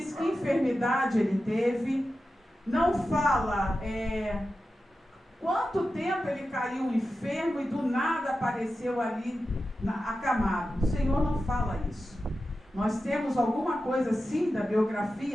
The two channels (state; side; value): normal; both; correlation 0.92